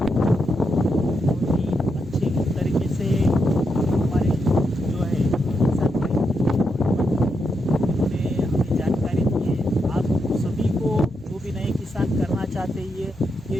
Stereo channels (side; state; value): both; normal; correlation 0.83